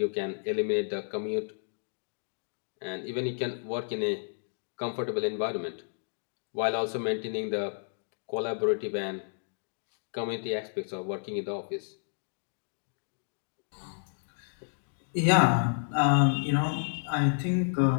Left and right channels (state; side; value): silent; right; digital silence